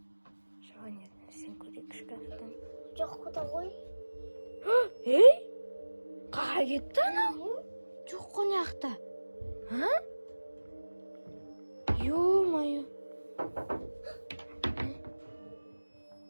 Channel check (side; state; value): both; inverted; correlation -1.00